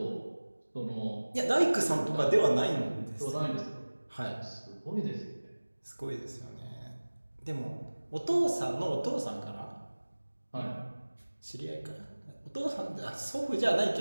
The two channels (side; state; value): both; inverted; correlation -1.00